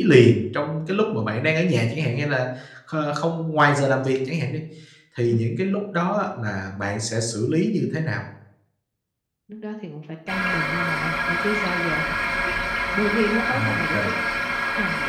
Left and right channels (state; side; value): identical; both; correlation 1.00